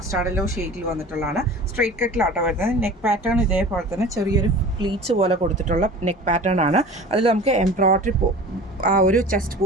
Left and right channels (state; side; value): normal; both; correlation 0.40